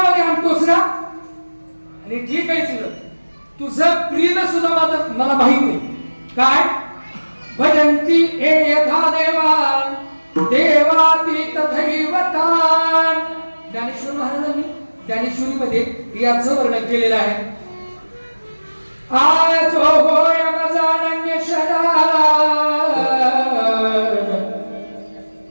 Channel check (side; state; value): both; inverted; correlation -1.00